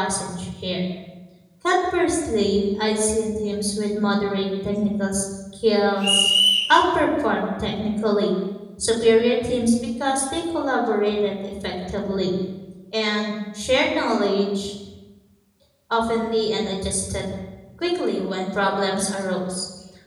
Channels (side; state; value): both; identical; correlation 1.00